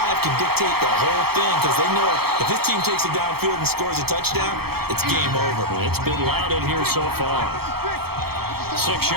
can dictate the whole thing because they know if this team takes it downfield and scores a touchdown, it's game over. It's been loud in here so far. 6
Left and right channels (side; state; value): left; late; 0.96 ms